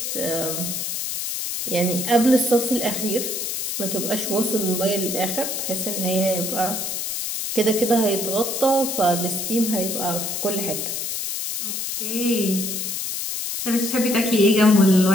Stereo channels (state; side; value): noise; left; hiss, 3 dB below the sound